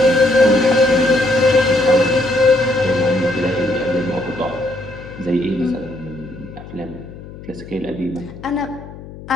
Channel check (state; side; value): noise; left; hum, 15 dB below the sound